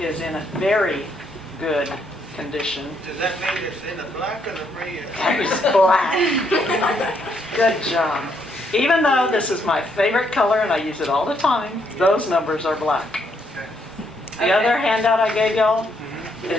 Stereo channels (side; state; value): both; normal; correlation 0.74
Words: is in a very good condition. Does that mean it's in the black or the red? It's black. Good job. Even though this is my favorite color and I use it all the time, those numbers are black. The other handout I gave y'all